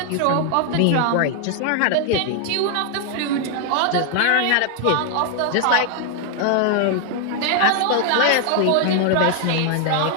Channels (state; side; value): different; both; correlation 0.00